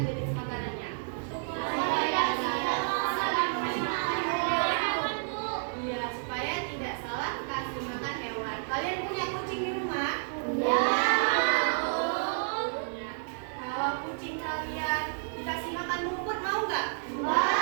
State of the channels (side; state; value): left; silent; digital silence